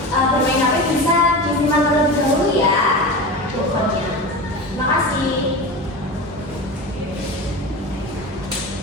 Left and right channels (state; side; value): normal; both; correlation 0.27